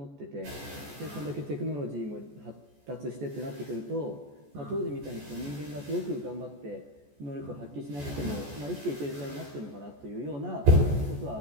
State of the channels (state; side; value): late; left; 14 ms